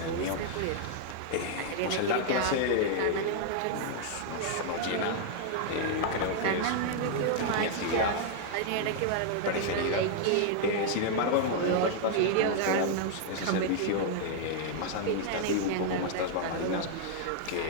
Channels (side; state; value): both; different; correlation -0.01